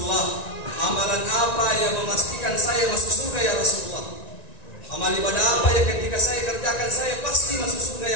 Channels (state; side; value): late; right; 1.9 ms